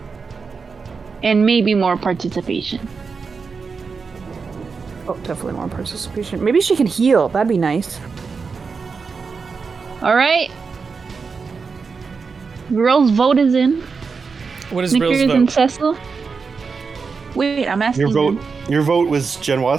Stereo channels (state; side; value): quieter; left; 5.1 dB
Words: And maybe more participation. Oh, definitely more participation. Maybe she can heal. That'd be nice. Alright. Girl's vote is in. What is Snickers Rill's and vote? Cecil. Wait, I'm asking Your vote was